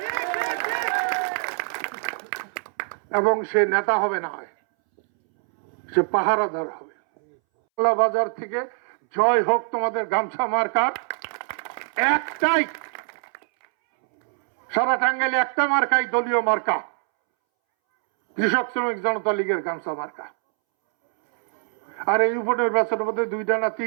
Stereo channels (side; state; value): left; silent; 63 dB below the other